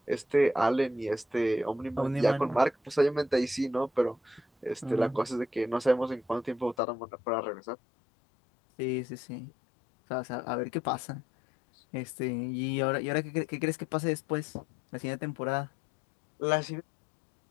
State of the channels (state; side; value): drops out; right; at 6.8 s